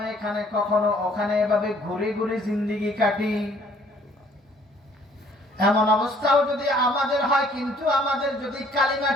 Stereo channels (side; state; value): both; normal; correlation 0.60